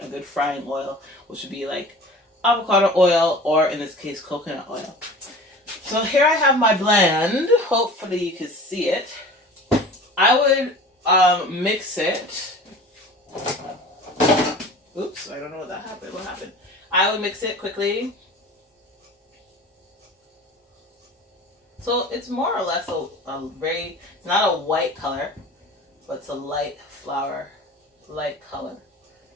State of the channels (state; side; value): normal; both; correlation 0.40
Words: a good frying oil, which would be like avocado oil or, in this case, coconut oil. So here I have my blend. Hopefully you can see it. I would mix it. Oops, I don't know what that happened. What happened? I would mix it quickly. So it's more or less it's not a white color, but it's a light flour, light color